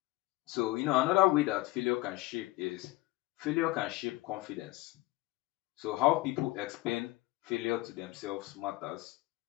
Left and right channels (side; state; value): right; quieter; 19.7 dB